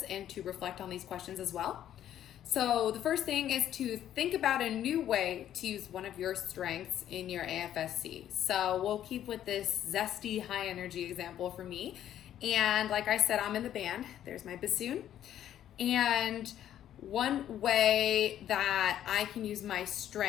and to reflect on these questions as well. So the first thing is to think about a new way to use one of your strengths in your AFSC. So we'll keep with this zesty high energy example for me. And like I said, I'm in the band. There's my bassoon. And one way that I can use my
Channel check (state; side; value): quieter; right; 11.2 dB